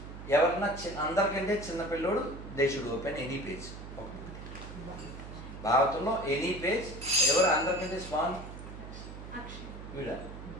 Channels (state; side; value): noise; right; hum, 12 dB below the sound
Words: ఎవరన్నా అందరికంటే చిన్న పిల్లోడు they should open any page. భాగవతంలో ఎనీ పేజ్. ఎవరు అందరికంటే స్మాల్? వీడా?